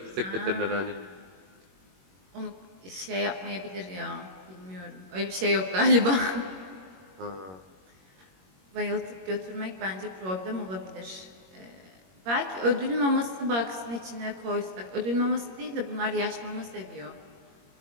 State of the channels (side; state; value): left; late; 21 ms